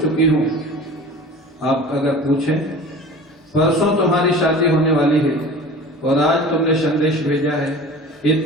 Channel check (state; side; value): normal; both; correlation 0.39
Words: हूं। आप अगर पूछें, परसों तुम्हारी शादी होने वाली है और आज तुमने संदेश भेजा है,